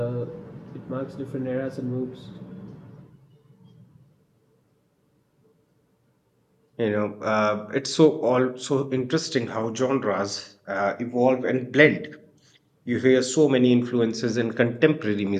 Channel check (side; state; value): both; identical; correlation 1.00